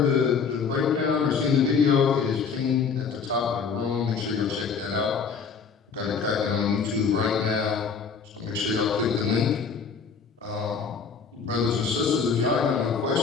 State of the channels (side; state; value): right; quieter; 5.8 dB